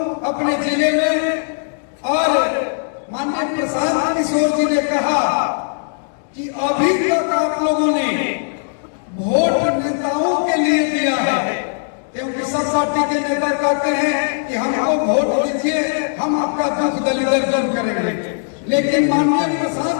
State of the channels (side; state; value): right; silent; digital silence